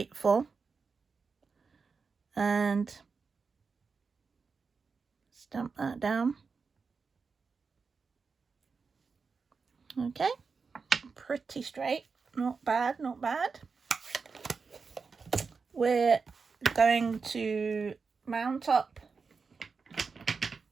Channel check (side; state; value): left; quieter; 5.0 dB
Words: and stamp that down. Okay, pretty straight, not bad. We're going to mount up